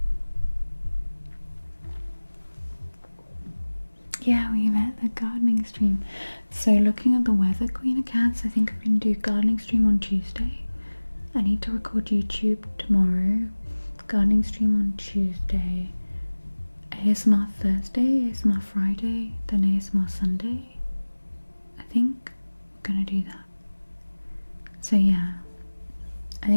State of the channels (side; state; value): both; inverted; correlation -1.00